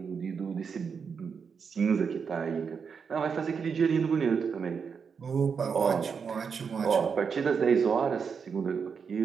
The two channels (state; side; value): quieter; left; 6.1 dB